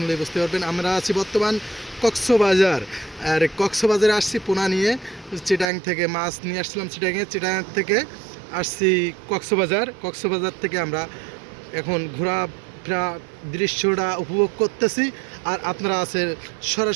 বুঝতে পারবেন। আমরা আছি বর্তমান কক্সবাজার। আর কক্সবাজারে আসছি পোনা নিয়ে। চিটাং থেকে মাছ নিয়ে আসছিলাম, চিটাং থেকে আসছি কক্সবাজার থেকে আমরা এখন ঘোরাফেরা দৃশ্যটা উপভোগ করতেছি, আর আপনারা আছেন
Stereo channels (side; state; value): left; drops out; at 5.7 s